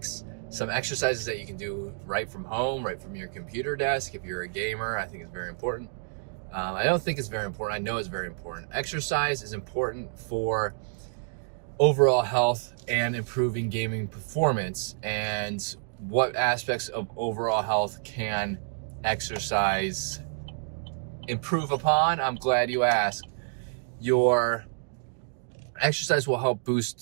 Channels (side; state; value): left; silent; digital silence